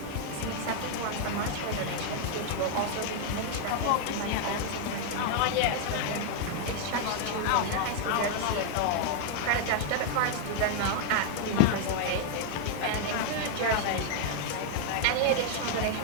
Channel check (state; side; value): different; both; correlation 0.00